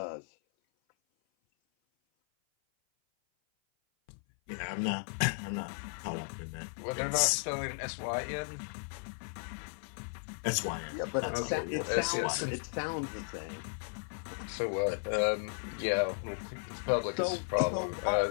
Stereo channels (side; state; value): right; silent; 54 dB below the other